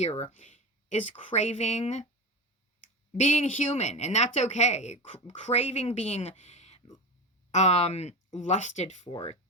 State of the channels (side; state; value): both; normal; correlation 0.24